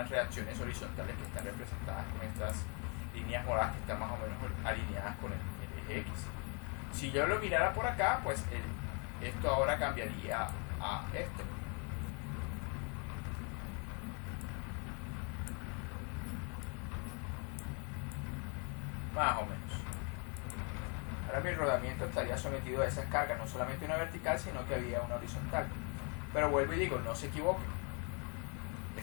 reacciones horizontales que están representadas con estas líneas moradas que están más o menos alineadas con el eje X. Si yo lo mirara por acá, pues esto ahora cambiaría a esto. Más o menos. Ahora mi rodamiento estaría sometido a esas cargas, no solamente una vertical, sino que había una horizontal. Pero vuelvo y digo, no se equivoquen.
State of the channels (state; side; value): quieter; right; 35.7 dB